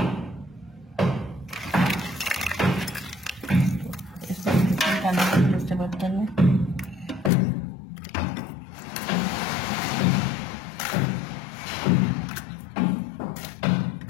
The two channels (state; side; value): drops out; right; at 7.3 s